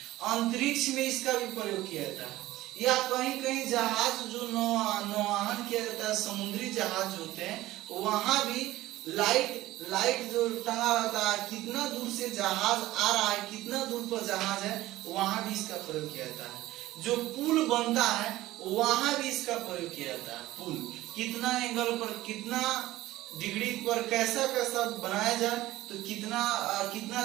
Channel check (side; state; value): left; quieter; 16.5 dB